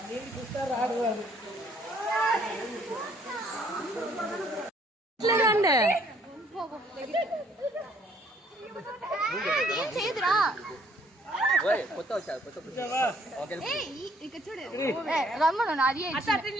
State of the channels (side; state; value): both; normal; correlation 0.63